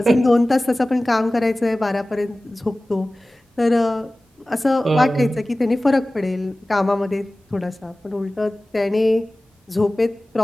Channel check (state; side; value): normal; both; correlation 0.97